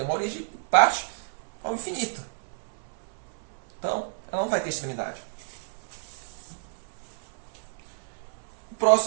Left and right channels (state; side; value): silent; left; 58 dB below the other